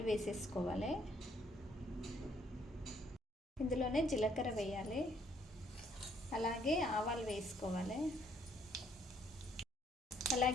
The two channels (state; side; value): normal; both; correlation 0.66